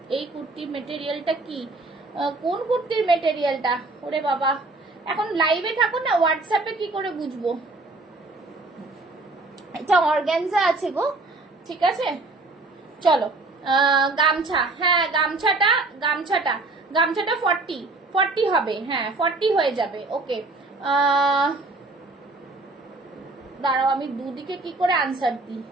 এই কুর্তি মেটেরিয়ালটা কি, কোন কুর্তির মেটেরিয়ালটা, ওরে বাবা, এখন লাইভে থাকো না, হোয়াটসঅ্যাপে কি করে বুঝবো। এটা অর্গানজা আছে গো, ঠিক আছে। চলো গামছা, হ্যাঁ গামছাটা 40 হবে, হ্যাঁ 40 হয়ে যাবে, ওকে। দাঁড়াও আমি দুদিকে কি করে আনসার দিই।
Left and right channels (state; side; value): quieter; left; 3.3 dB